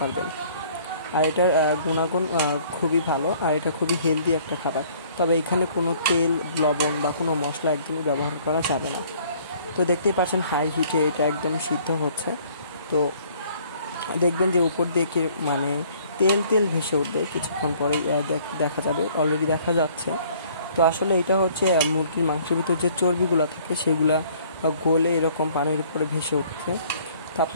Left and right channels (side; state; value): both; inverted; correlation -0.57